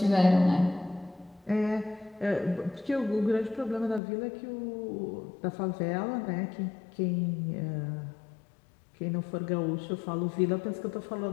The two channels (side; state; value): right; drops out; at 4.0 s